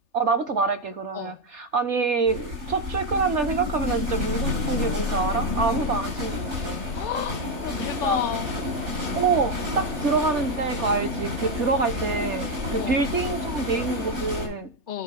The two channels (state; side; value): late; left; 3.3 ms